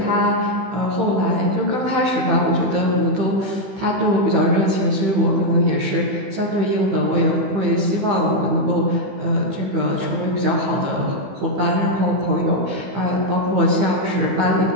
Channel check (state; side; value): late; left; 16 ms